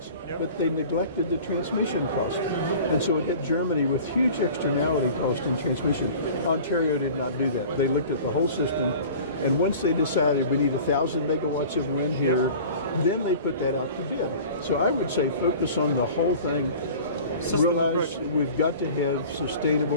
Yep. But they neglected the transmission cost. And so it hit Germany with huge externality cost in transmission. Ontario did not do that. They looked at the whole system, and once they decided we need 1,000 megawatts of wind here, then they put that out to bid. So I would say focus on the whole thing. System Realize approach. we've got to have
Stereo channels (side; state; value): both; inverted; correlation -0.42